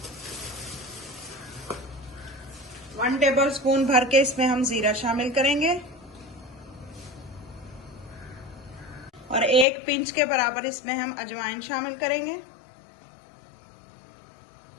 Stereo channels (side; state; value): right; drops out; at 9.7 s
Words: वन टेबल स्पून भर के इसमें हम जीरा शामिल करेंगे और 1 पिंच के बराबर इसमें हम अजवाइन शामिल करेंगे।